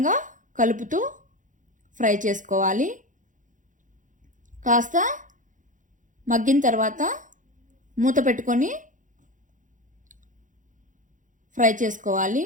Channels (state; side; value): late; left; 0.37 ms